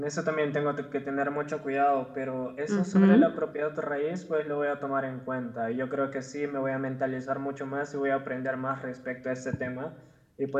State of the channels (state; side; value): identical; both; correlation 1.00